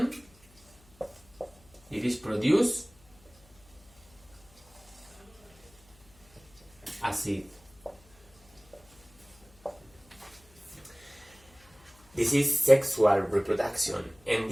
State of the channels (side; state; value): left; noise; hum, 28 dB below the sound